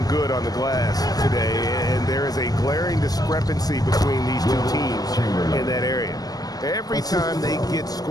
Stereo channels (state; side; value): late; right; 0.18 ms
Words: good on the glass today, and there is a glaring discrepancy between these two teams in that area. Every time they get